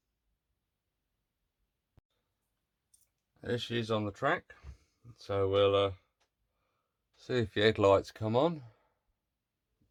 There she is on the track. So we'll see if the headlights come on.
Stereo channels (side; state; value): both; identical; correlation 1.00